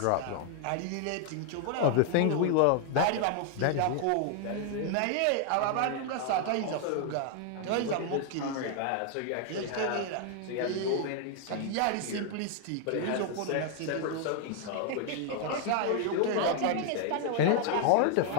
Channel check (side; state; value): both; different; correlation 0.00